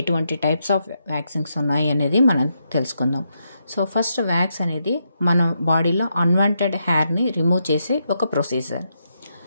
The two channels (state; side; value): inverted; both; correlation -0.81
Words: టైప్స్ ఆఫ్ వ్యాక్సింగ్స్ ఉన్నాయి అనేది మనం తెలుసుకుందాం. సో ఫస్ట్, వ్యాక్స్ అనేది మన బాడీలో అన్వాంటెడ్ హెయిర్ని రిమూవ్ చేసే ఒక ప్రొసీజర్.